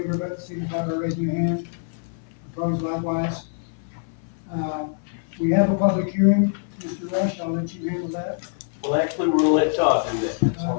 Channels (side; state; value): right; silent; 56 dB below the other